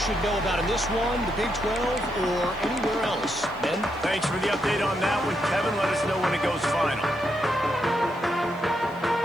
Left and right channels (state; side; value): noise; left; hiss, 29 dB below the sound